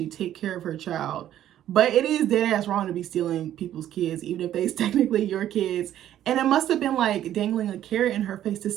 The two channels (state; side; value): quieter; left; 11.8 dB